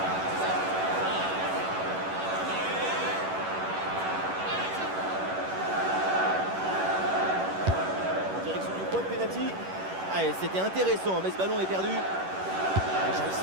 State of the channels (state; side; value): late; left; 11 ms